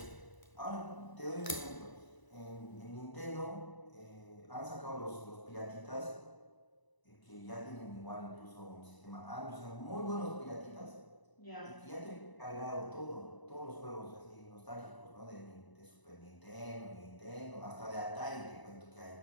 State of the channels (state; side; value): late; right; 1.0 ms